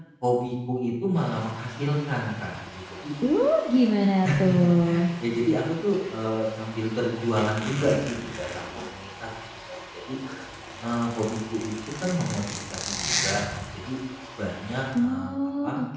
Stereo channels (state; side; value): identical; both; correlation 1.00